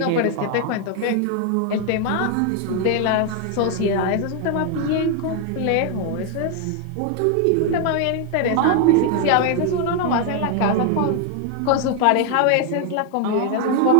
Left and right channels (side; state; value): both; different; correlation 0.00